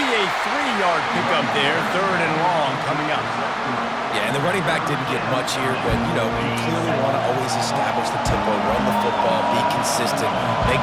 a 3-yard pickup there, third and long coming up. Yeah, and the running back didn't get much here, but, you clearly want to always establish the tempo, run the football, be consistent, make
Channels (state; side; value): identical; both; correlation 1.00